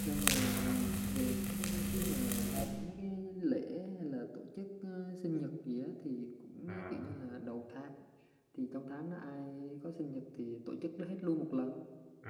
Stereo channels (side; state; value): both; identical; correlation 1.00